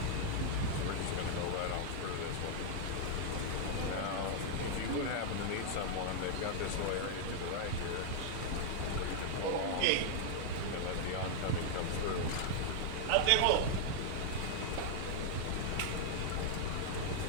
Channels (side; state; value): both; different; correlation -0.01